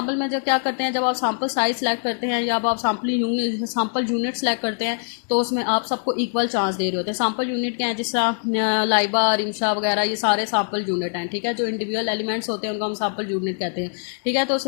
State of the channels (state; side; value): silent; right; digital silence